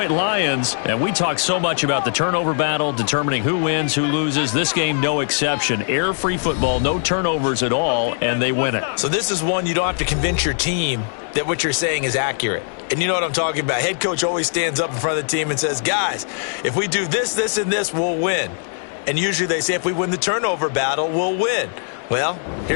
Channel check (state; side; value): silent; right; digital silence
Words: Lions. And we talk so much about the turnover battle, determining who wins, who loses. This game, no exception. Error-free football, no turnovers at all, and they win it. So this is one you don't have to convince your team that what you're saying is accurate. And you know what I'm talking about. Head coach always stands up in front of the team and says, guys, if we do this, this, and this, we'll win. And usually they say if we win the turnover battle, we'll win. Well,